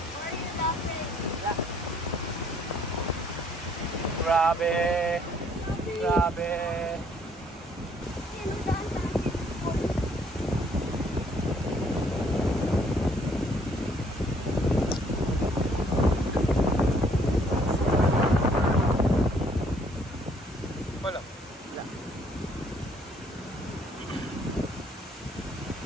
Grabe. Grabe. Wala.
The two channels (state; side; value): normal; both; correlation 0.64